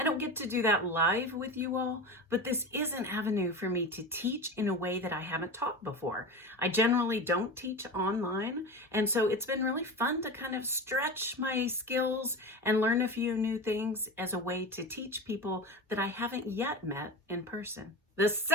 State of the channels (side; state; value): both; normal; correlation 0.26